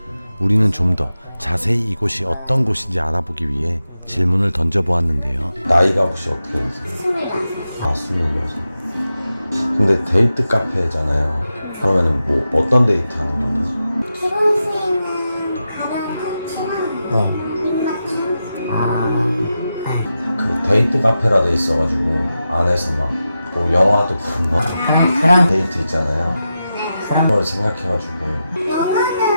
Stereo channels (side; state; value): both; inverted; correlation -0.90